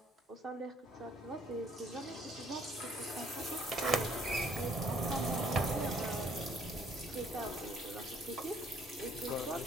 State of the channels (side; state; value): both; normal; correlation 0.63